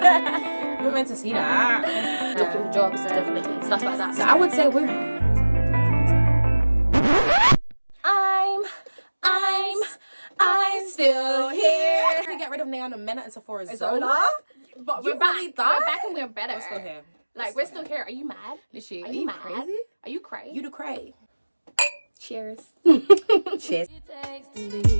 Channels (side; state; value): both; inverted; correlation -1.00